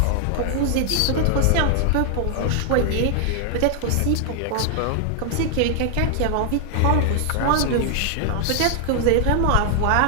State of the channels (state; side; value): different; both; correlation 0.00